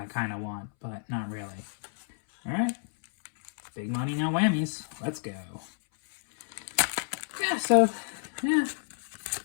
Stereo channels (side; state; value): right; silent; 58 dB below the other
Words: kind of want, but not really. Alright, big money, no whammies. Let's go. Yeah, so, yeah.